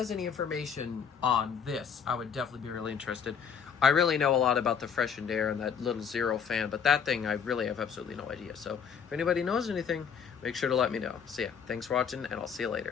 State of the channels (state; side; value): quieter; right; 7.1 dB